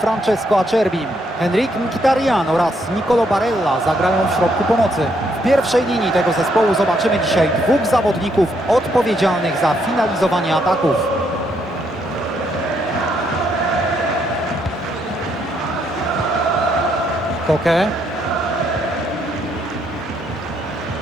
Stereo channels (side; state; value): both; normal; correlation 0.74